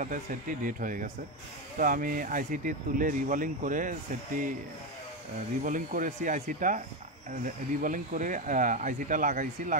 সেটটি ডেট হয়ে গেছে। তো আমি আইসিটি তুলে রিবলিং করেছি রিবলিং করে আইসিটা লাগাইছি।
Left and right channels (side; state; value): both; normal; correlation 0.11